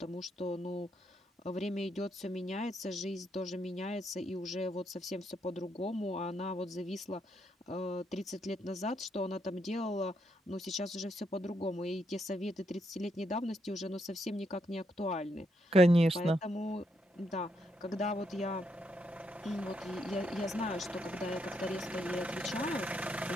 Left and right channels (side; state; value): both; normal; correlation 0.78